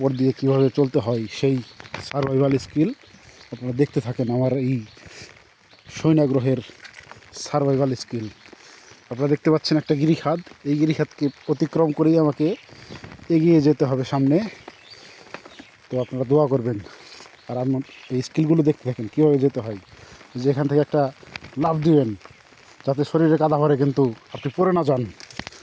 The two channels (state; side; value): identical; both; correlation 1.00